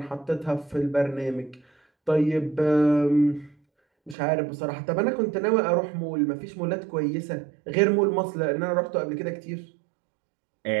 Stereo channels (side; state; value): left; drops out; at 4.2 s